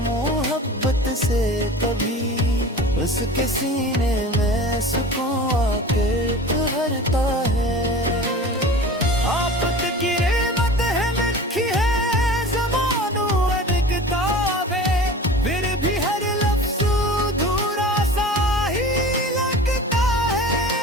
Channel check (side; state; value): both; normal; correlation 0.38